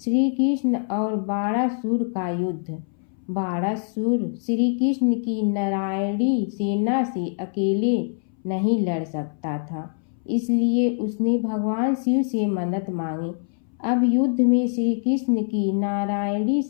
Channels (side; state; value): right; silent; 61 dB below the other